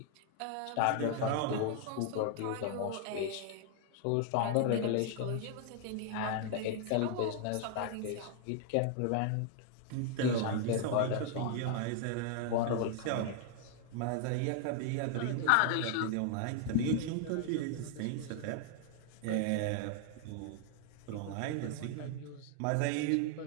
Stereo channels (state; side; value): different; both; correlation 0.00